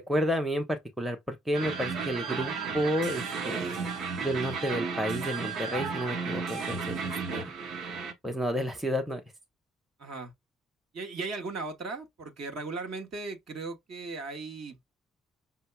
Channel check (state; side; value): normal; both; correlation 0.66